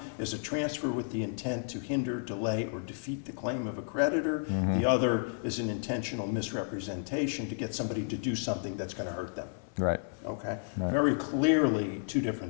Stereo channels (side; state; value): right; silent; 56 dB below the other